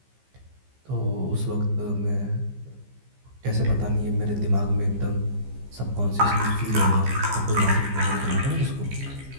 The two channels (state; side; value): late; left; 15 ms